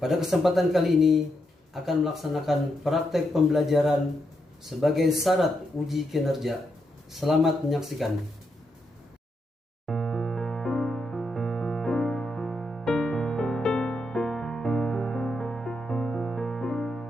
Pada kesempatan kali ini akan melaksanakan praktek pembelajaran sebagai syarat uji kinerja. Selamat menyaksikan.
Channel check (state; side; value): normal; both; correlation 0.82